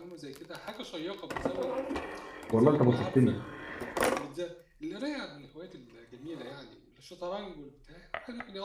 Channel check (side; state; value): both; identical; correlation 1.00